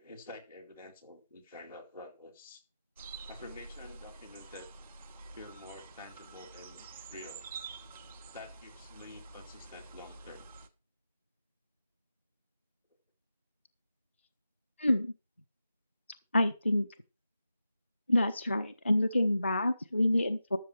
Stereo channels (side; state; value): both; inverted; correlation -0.92